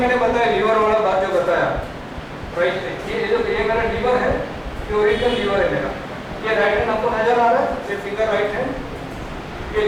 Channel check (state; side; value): identical; both; correlation 1.00